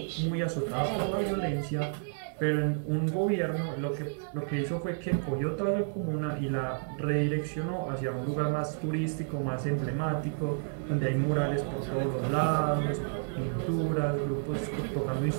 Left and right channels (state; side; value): silent; left; digital silence